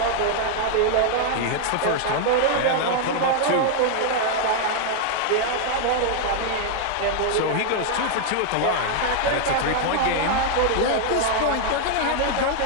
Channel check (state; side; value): different; both; correlation 0.00